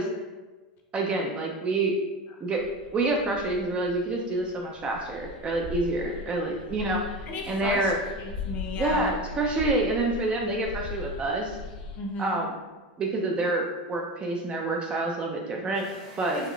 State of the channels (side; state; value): both; normal; correlation 0.28